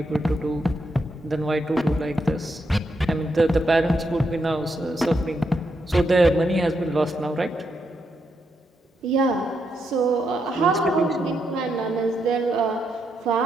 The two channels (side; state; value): both; normal; correlation 0.81